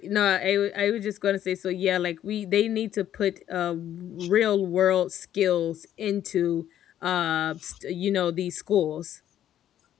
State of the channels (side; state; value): right; quieter; 11.2 dB